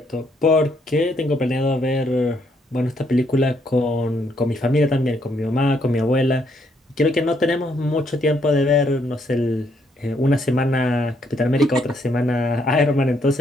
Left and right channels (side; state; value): both; normal; correlation 0.72